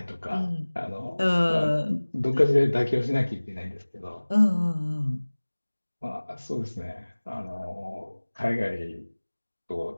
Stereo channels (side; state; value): both; inverted; correlation -1.00